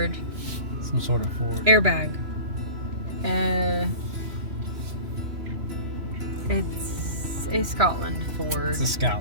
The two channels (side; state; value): left; late; 3.0 ms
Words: Some sort of Ford. Airbag. It's a Scotland Ford. It's a